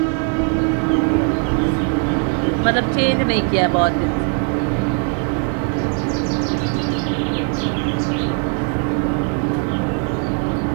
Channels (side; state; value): left; quieter; 38.6 dB